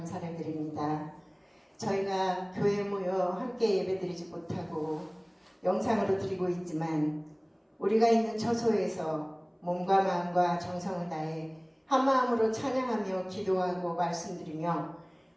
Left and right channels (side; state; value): both; identical; correlation 1.00